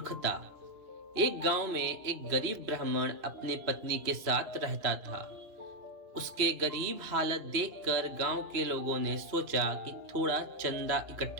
एक गांव में एक गरीब ब्राह्मण अपनी पत्नी के साथ रहता था। उसके गरीब हालत देखकर गांव के लोगों ने सोचा कि थोड़ा चंदा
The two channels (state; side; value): late; left; 2.9 ms